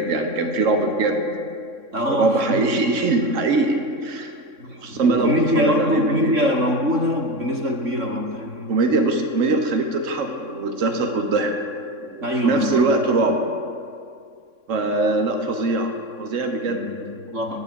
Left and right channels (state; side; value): late; left; 3.6 ms